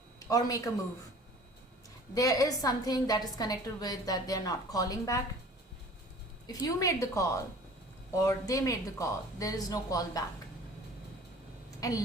or make a move. There is something that is connected with that they're not calling back. If you made the call or they made the call, there is no call back.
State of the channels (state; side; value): normal; both; correlation 0.46